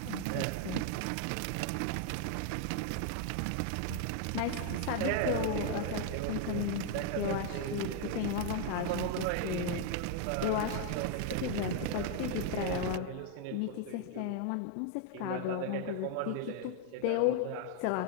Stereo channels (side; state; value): both; different; correlation 0.00